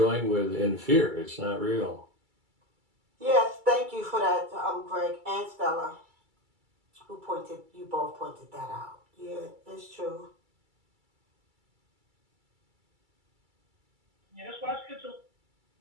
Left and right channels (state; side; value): late; left; 2.3 ms